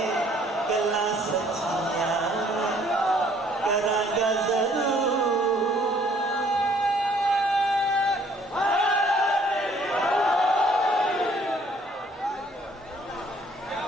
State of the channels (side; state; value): both; normal; correlation 0.61